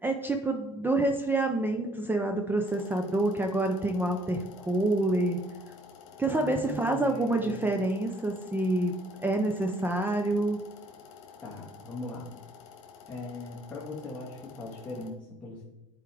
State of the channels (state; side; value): normal; both; correlation 0.65